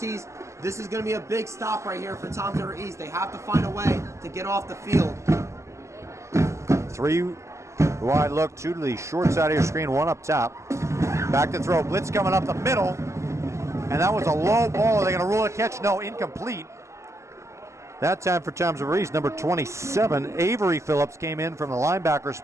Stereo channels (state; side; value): late; left; 0.14 ms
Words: This is going to be a big stop right here for Toms River East. They have to find a way to get off the field. 3-wide look, 2 to the short side of your screen, 1 up top. Back to throw, blitz coming up the middle. And that was a low ball. Are they going to rule a catch? No, incomplete. That time for Toms River East, number 27, Avery Phillips came in from the linebacker